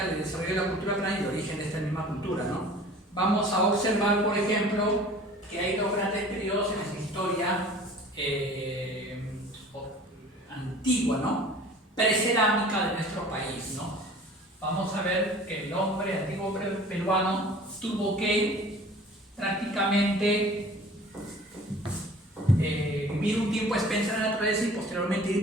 del desarrollo de la cultura peruana y el origen de esta misma cultura, ¿no? Vamos a observar, por ejemplo, que hay 2 grandes periodos en la historia antigua, ¿no? Precerámica de nuestro país, ¿no? Vamos a ver que el hombre antiguo peruano tuvo que prácticamente vivir un tiempo a expensas de la naturaleza y posteriormente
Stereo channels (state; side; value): normal; both; correlation 0.46